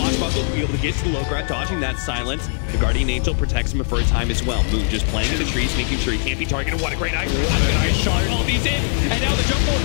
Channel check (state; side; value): silent; right; 62 dB below the other